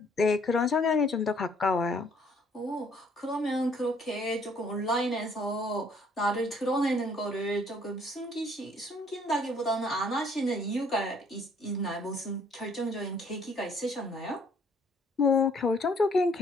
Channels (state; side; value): normal; both; correlation 0.62